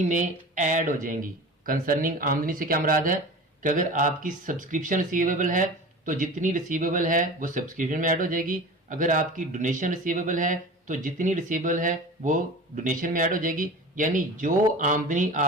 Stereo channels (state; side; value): normal; both; correlation 0.36